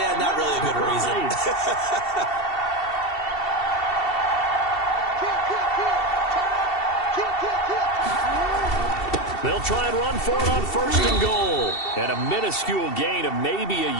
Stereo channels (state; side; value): late; right; 2.7 ms